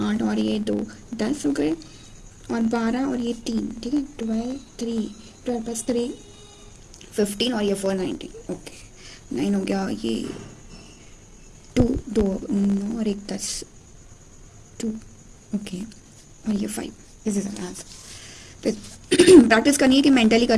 8 और ये 2 10 हो गए, और 12 और ये 3, ठीक है 12 प्लस 3 15, और ये 4 19, ओके 9 हो गया, ये 2 2 9 और 1 10 2, ओके, और ये 5, दिस इज आंसर। प्रैक्टिस करनी है कि मेंटली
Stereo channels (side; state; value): both; identical; correlation 1.00